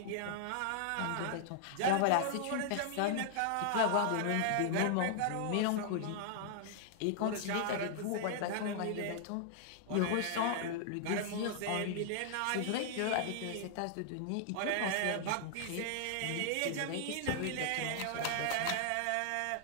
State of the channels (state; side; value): different; both; correlation -0.01